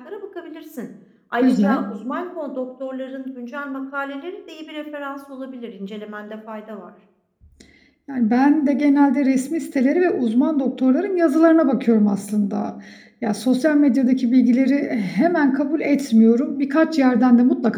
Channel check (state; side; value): identical; both; correlation 1.00